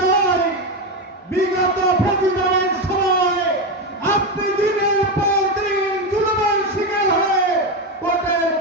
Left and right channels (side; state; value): both; normal; correlation 0.13